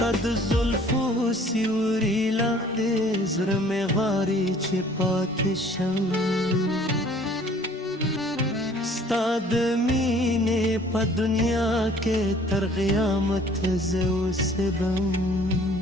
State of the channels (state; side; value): normal; both; correlation 0.54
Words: د زلفو سیوري لاندې زړه مې غواړي چې پاتې شم ستا د مینې په دنیا کې تر قیامت زه اوسېږم